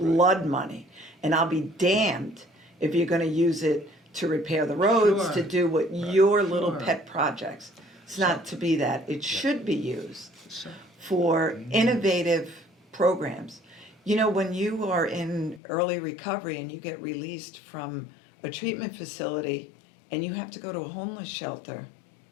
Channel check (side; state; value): right; drops out; at 15.6 s